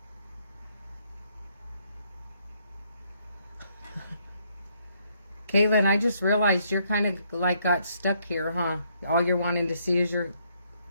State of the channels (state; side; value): inverted; both; correlation -0.71